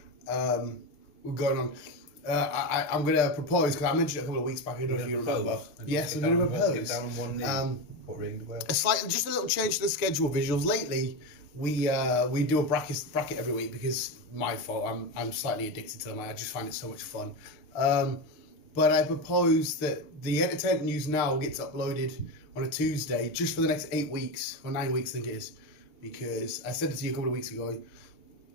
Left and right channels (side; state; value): right; late; 6.8 ms